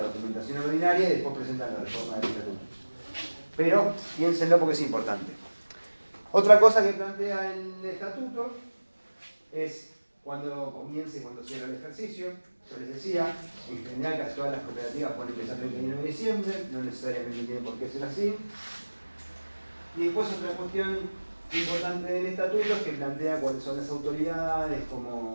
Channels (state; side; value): inverted; both; correlation -1.00